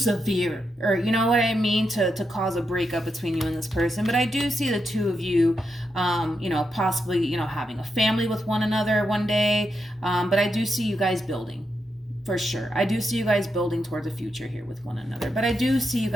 or you know what I mean, to cause a breakup between you and this person. But I do see the two of you possibly having a family with one another one day, but I do see you guys building, for sure. I do see you guys building towards a future here with one another, but I do see you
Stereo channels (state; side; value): normal; both; correlation 0.85